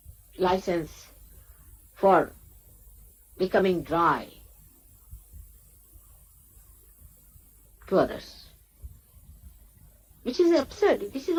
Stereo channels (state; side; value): identical; both; correlation 1.00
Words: license for becoming dry to others, which is absurd. This is